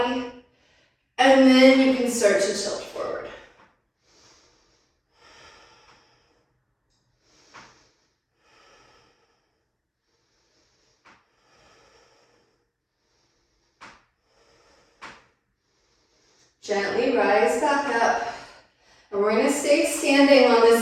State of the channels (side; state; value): both; identical; correlation 1.00